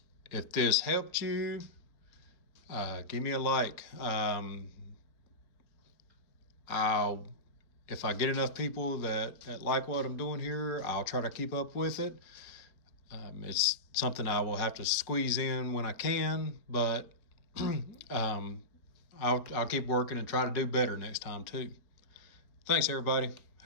If this helped you, give me a like. If I get enough people that like what I'm doing here, I'll try to keep up with it. It's something I will have to squeeze in when I can, but I'll keep working and try to do better next time too. Thanks, everybody.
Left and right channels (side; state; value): right; late; 4.6 ms